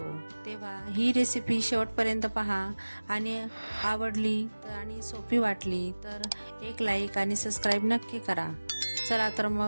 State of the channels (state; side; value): inverted; both; correlation -1.00